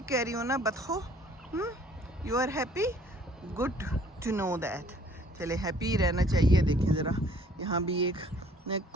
कह रही हो ना बतखो? You are happy? Good to know that. चले हैप्पी रहना चाहिए। देखिए ज़रा, यहाँ भी एक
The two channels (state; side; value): normal; both; correlation 0.57